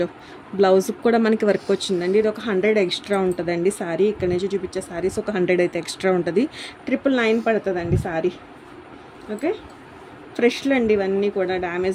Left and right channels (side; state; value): both; identical; correlation 1.00